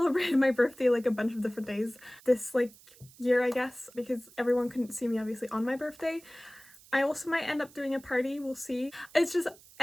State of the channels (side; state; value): right; noise; hiss, 24 dB below the sound